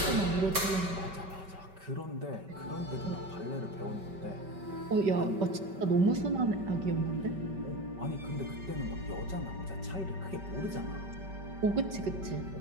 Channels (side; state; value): left; late; 5.2 ms